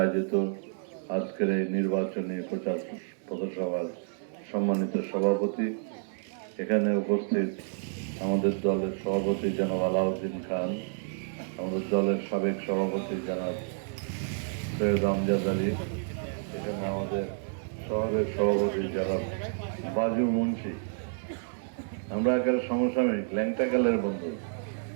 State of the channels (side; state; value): left; silent; digital silence